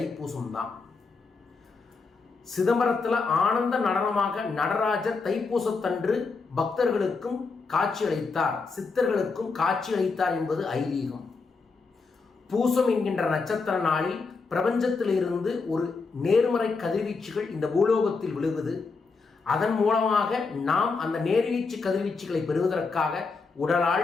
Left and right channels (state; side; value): quieter; right; 4.4 dB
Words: தான். சிதம்பரத்தில் ஆனந்த நடனமாக நடராஜர் தைப்பூசத்தன்று பக்தர்களுக்கும் காட்சியளித்தார், சித்தர்களுக்கும் காட்சியளித்தார் என்பது ஐதீகம். பூசம் என்கின்ற நட்சத்திர நாளில் பிரபஞ்சத்திலிருந்து ஒரு நேர்மறை கதிர்வீச்சுகள் இந்த பூலோகத்தில் விழுவது. அதன் மூலமாக நாம் அந்த நேர்வீச்சு கதிர்வீச்சுகளை பெறுவதற்காக